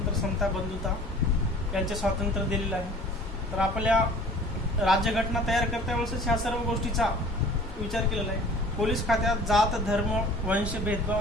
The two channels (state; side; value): normal; both; correlation 0.47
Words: समता, बंधुता यांचे स्वातंत्र्य दिलेलं आहे. तर आपल्या राज्यघटना तयार करता वेळेसच ह्या सर्व गोष्टीचा विचार केलेला आहे. पोलीस खात्यात जात, धर्म, वंश